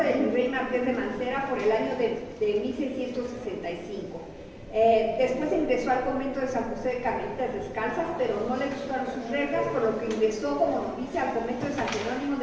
del virrey Marqués de Mancera por el año de 1665. Después ingresó al convento de San José de Carmelitas Descalzas, pero no le gustaron sus reglas, por lo que ingresó como novicia al convento de San Jerónimo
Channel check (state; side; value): identical; both; correlation 1.00